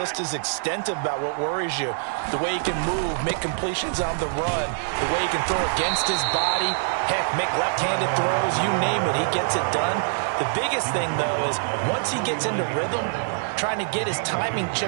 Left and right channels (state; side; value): silent; left; 62 dB below the other